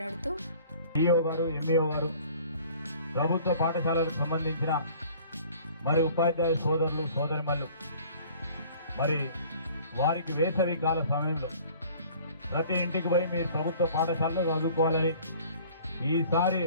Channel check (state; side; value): inverted; both; correlation -0.50